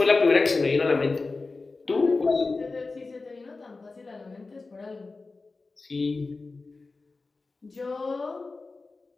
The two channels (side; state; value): right; quieter; 3.8 dB